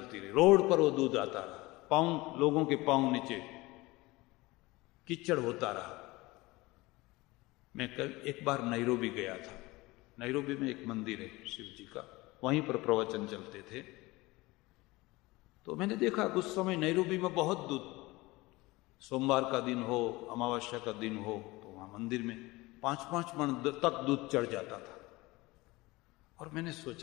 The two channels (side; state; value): right; quieter; 21.4 dB